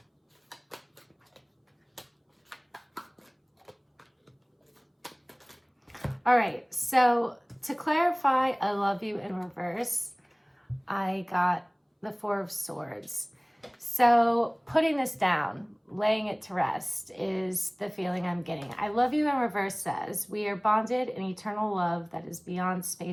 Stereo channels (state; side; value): identical; both; correlation 1.00